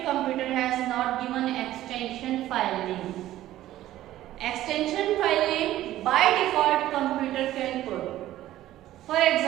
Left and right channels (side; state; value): left; quieter; 14.2 dB